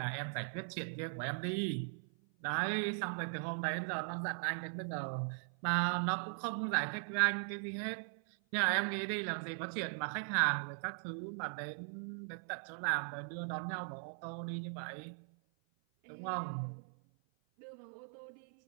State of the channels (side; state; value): left; silent; 52 dB below the other